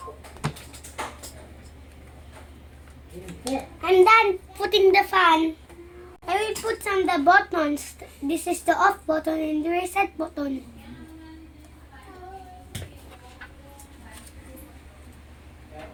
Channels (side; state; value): both; identical; correlation 1.00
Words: I'm done putting the fan. I will put some the buttons. This is the off button and the reset button.